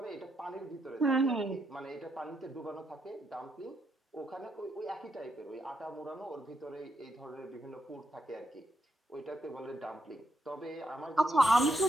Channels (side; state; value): both; normal; correlation 0.80